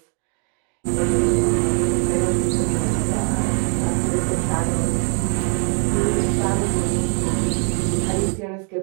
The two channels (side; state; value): left; quieter; 37.6 dB